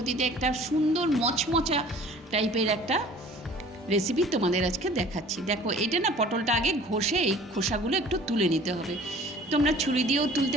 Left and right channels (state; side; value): normal; both; correlation 0.48